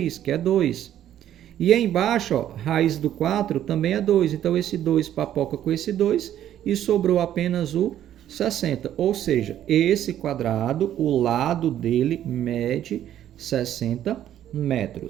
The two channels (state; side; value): quieter; left; 11.3 dB